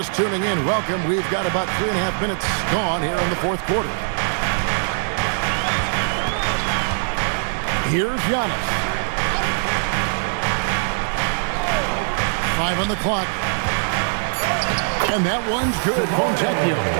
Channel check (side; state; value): left; silent; digital silence